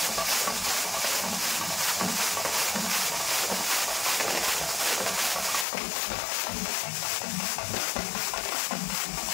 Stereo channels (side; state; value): right; drops out; at 5.7 s